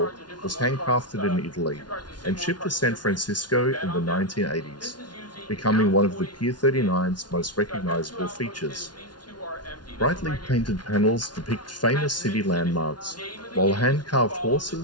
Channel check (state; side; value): late; right; 0.70 ms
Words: was handcrafted in Italy and shipped to San Francisco in the 1980s, becoming one of the Pier 39's most recognizable features. Brightly painted panels depict famous city landmarks, while hand-carved